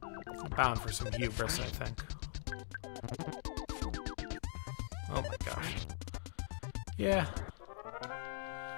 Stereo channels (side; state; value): right; silent; digital silence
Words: Bound for some hubris, I think. Oh my gosh. Yeah.